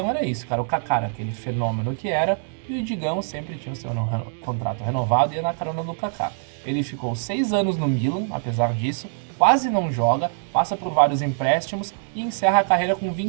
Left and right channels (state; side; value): silent; left; digital silence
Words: era isso, cara. O Kaká era aquele fenômeno que era, e o Digão sempre tinha o seu contrato renovado e ia na carona do Kaká. Ele ficou 6 anos no Milan, apesar disso, quase não joga, passa por vários empréstimos e encerra a carreira com